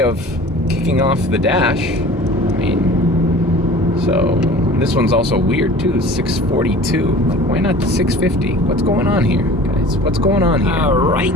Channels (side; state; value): both; normal; correlation 0.43